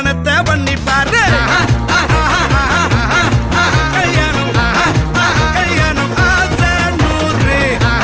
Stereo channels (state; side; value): identical; both; correlation 1.00